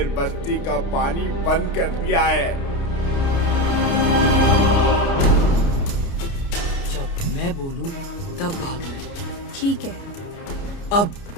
बस्ती का पानी बंद कर दिया है। जब मैं बोलूं तब भागना है। ठीक है। अब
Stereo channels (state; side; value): late; right; 29 ms